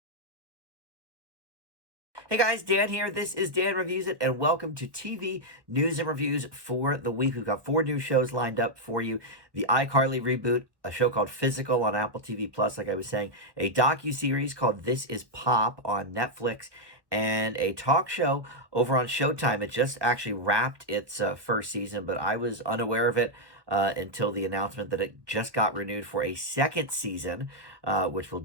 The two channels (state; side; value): late; left; 1.1 ms